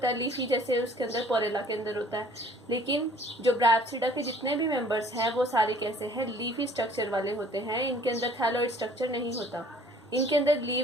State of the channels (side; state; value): both; normal; correlation 0.55